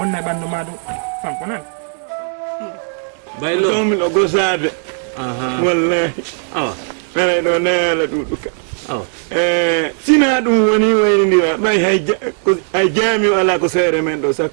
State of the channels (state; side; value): silent; left; 59 dB below the other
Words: e ɓandu ma ɗum fanko nan baylo tomi ɗo gosade wallahi aray ɗo neela ɗuɗuka sina ɗum woni waynidira ɓay hay jaami o ala ko seere men ɗo